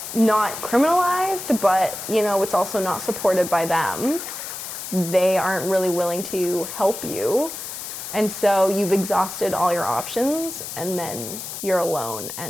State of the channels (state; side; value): noise; left; hiss, 8 dB below the sound